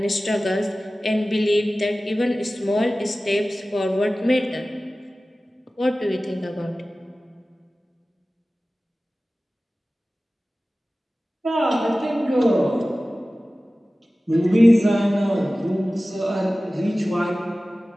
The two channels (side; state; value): both; normal; correlation 0.97